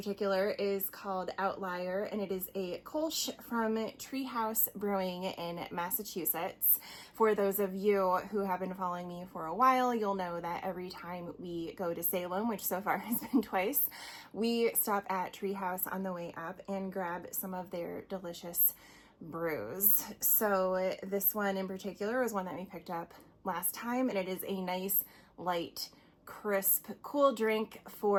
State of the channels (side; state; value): both; identical; correlation 1.00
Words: is called Outlier, and it is a Kolsch from Treehouse Brewing in Massachusetts. For those of you who have been following me for a while, you'll know that every time we go to Salem, which so far has been twice, we stop at Treehouse on the way up and grab some of their delicious brews. So this one in particular was one that we picked up last time, and it is a nice, light, crisp, cool drink